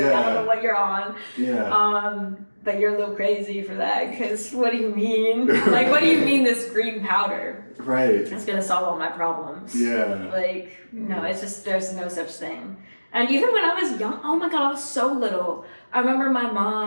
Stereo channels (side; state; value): both; inverted; correlation -1.00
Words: I don't know what you're on. But you're a little crazy for that, because what do you mean? Like, what do you mean this green powder? Right. It's going to solve all my problems. Like, no, it's just, there's no such thing. And even when I was young, oh my God, I was so little. I remember my